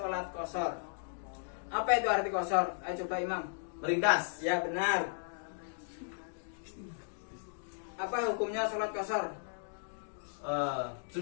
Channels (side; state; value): right; silent; digital silence